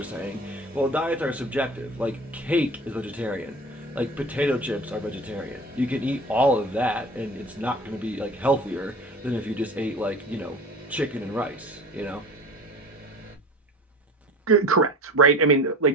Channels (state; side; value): normal; both; correlation 0.39